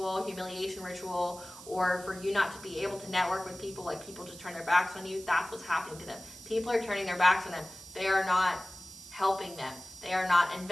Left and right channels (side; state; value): right; noise; hiss, 16 dB below the sound